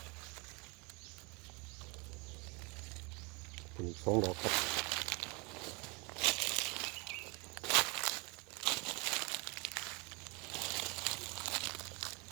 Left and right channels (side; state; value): left; quieter; 29.7 dB